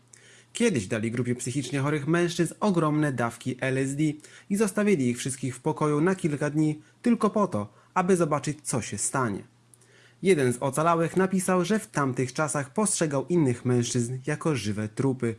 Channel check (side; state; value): both; identical; correlation 1.00